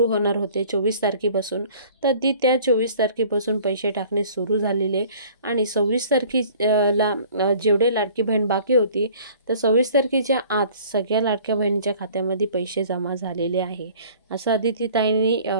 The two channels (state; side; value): inverted; both; correlation -0.51